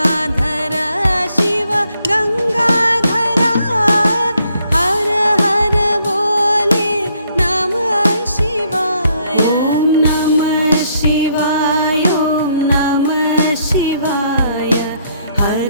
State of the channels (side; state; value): both; inverted; correlation -0.70